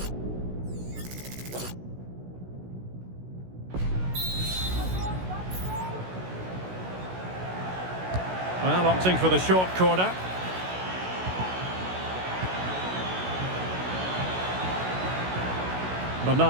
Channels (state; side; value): late; left; 16 ms